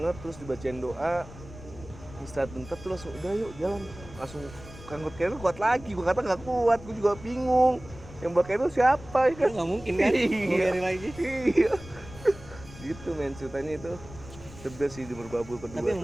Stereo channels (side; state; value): left; noise; rumble, 16 dB below the sound